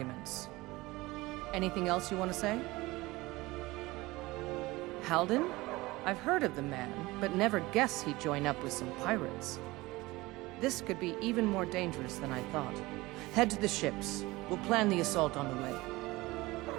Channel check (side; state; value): left; quieter; 20.6 dB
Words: Anything else you want to say? Halden? I've heard of the man, but never guessed he'd join up with some pirates. This could be even more dangerous than I thought. Head to the ships. We'll plan the assault on the way.